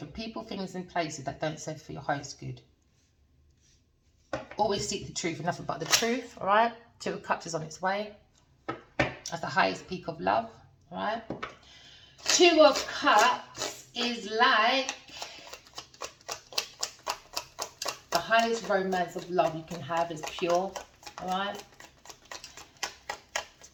people, things and places that don't serve for your highest good. Always seek the truth and nothing but the truth, all right? Two of Cups is on its way. That's the highest peak of love, all right? Two of Cups is like the highest romance of love you can have is pure, all right?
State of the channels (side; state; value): both; identical; correlation 1.00